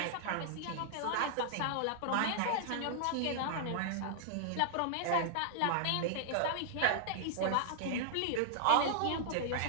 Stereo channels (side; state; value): both; different; correlation -0.01